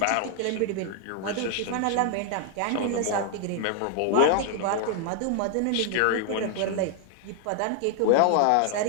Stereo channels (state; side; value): different; both; correlation 0.00